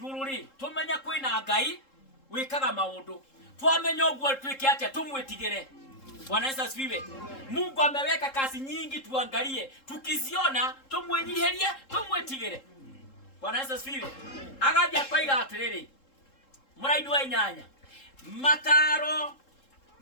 ri tumenya kwina Ngai wikaga maundu twamenya uguo twike atia tumwitigire. Bwana Yesu asifiwe. Mungu ameweka kazi nyingi tuangalie, tukiziona tumwenyiherie tumwetigire. Bwana Yesu asifiwe. Agathia kwaiga atiriri muraini wa inyanya mataro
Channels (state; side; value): late; right; 3.7 ms